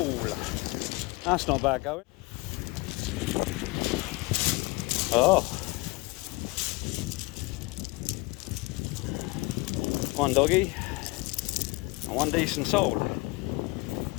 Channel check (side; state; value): right; quieter; 24.6 dB